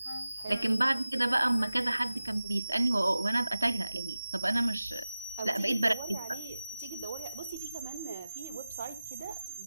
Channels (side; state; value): both; inverted; correlation -0.94